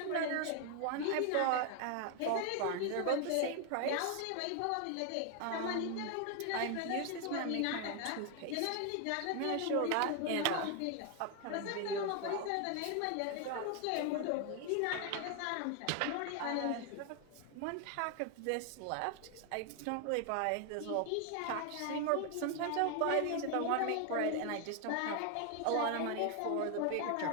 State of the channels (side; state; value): both; different; correlation 0.01